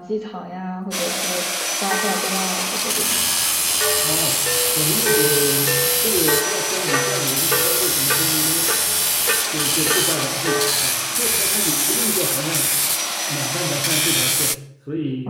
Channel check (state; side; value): identical; both; correlation 1.00